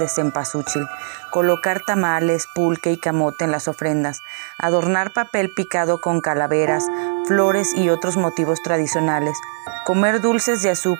cempasúchil, colocar tamales, pulque y camote en las ofrendas, adornar papel picado con calaveras, flores y otros motivos tradicionales, comer dulces de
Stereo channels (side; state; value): left; silent; digital silence